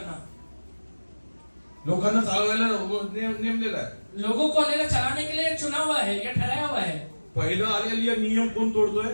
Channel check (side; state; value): both; inverted; correlation -1.00